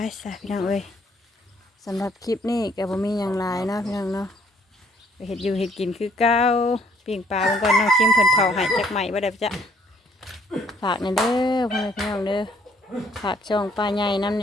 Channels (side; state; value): both; normal; correlation 0.64